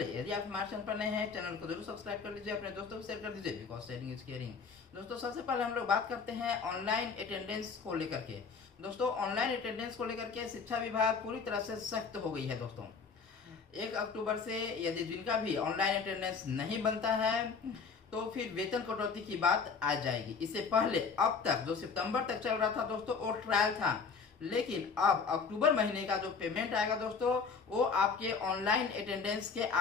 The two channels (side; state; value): right; quieter; 5.3 dB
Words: यदि आप हमारे चैनल पर नए हैं, चैनल को जरूर सब्सक्राइब कर लीजिए, अपने दोस्तों को शेयर कर दीजिए, बिकॉज शेयरिंग इज केयरिंग। दोस्तों सबसे पहले हम लोग बात करते हैं ऑनलाइन अटेंडेंस को लेकर के। दोस्तों ऑनलाइन अटेंडेंस को लेकर के शिक्षा विभाग पूरी तरह से सख्त हो गई है दोस्तों। 1 अक्टूबर से यदि जिनका भी ऑनलाइन अटेंडेंस नहीं बनता है तो फिर वेतन कटौती की बात आ जाएगी। इससे पहले अब तक जो सितंबर तक चल रहा था दोस्तों वो ट्रायल था, लेकिन अब अक्टूबर महीने का जो पेमेंट आएगा दोस्तों वो आपके ऑनलाइन अटेंडेंस के